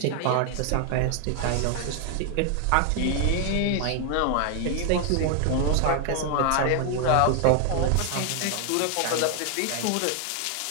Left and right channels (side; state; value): both; different; correlation 0.00